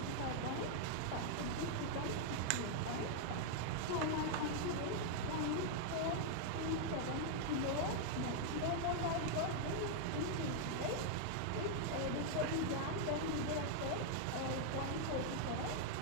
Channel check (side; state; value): both; different; correlation -0.01